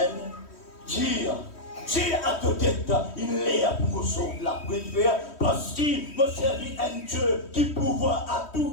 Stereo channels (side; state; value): right; late; 3.1 ms